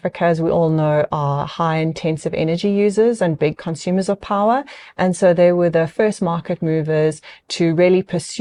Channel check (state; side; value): identical; both; correlation 1.00